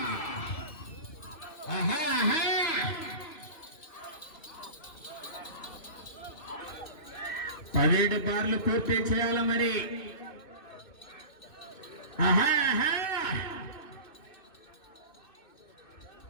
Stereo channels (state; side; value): late; right; 2.4 ms